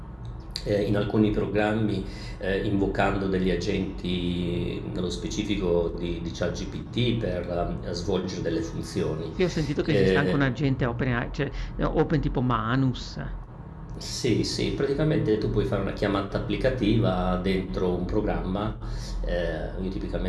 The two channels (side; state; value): both; identical; correlation 1.00